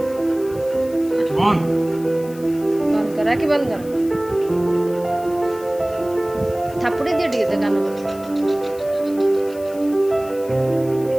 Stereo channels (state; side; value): noise; left; hiss, 21 dB below the sound